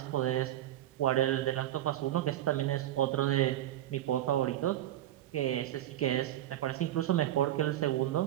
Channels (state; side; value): quieter; left; 13.3 dB